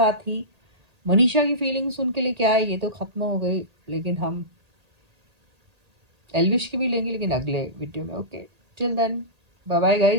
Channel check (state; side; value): late; left; 1.8 ms